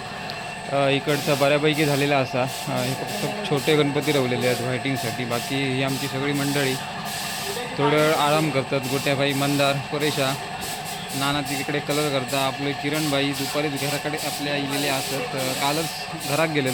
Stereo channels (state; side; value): identical; both; correlation 1.00